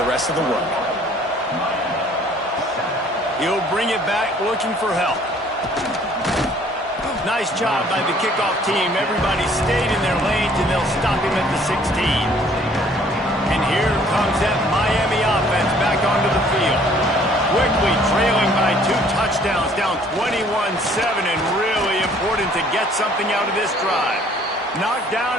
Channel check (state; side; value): normal; both; correlation 0.58